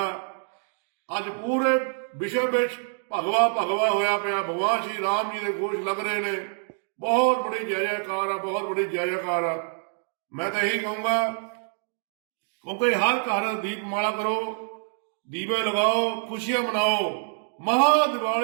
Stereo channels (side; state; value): left; silent; digital silence